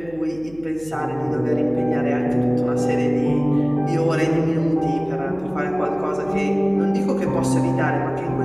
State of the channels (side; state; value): right; noise; hum, 22 dB below the sound